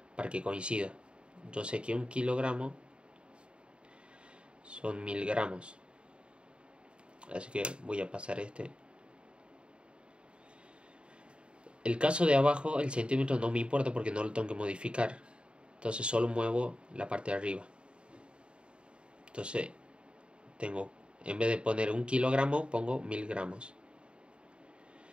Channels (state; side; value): late; left; 0.054 ms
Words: para que coincida. Yo sé que 1 kilogramo son 1000 gramos, así que voy a pasar este. El caso de abajo, el centímetro no me importa porque no lo tengo que modificar, entonces solo muevo la parte de arriba. Entonces tengo, en vez de poner 1 kilogramo, pongo 1000 gramos